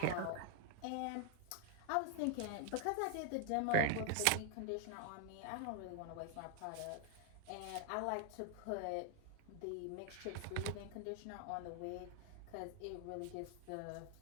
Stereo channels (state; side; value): different; both; correlation 0.00